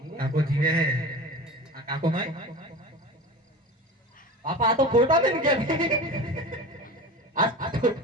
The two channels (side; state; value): both; normal; correlation 0.33